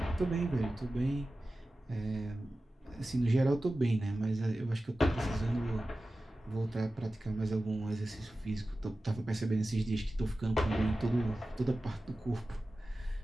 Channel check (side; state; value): both; normal; correlation 0.95